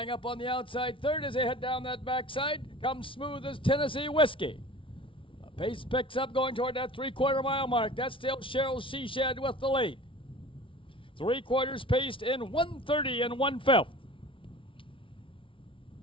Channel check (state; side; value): late; right; 0.25 ms